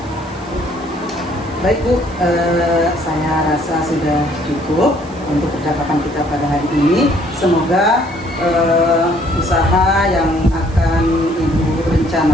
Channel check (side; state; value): right; noise; hiss, 25 dB below the sound